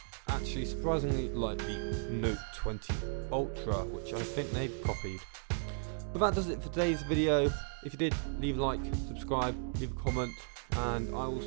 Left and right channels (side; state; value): left; silent; digital silence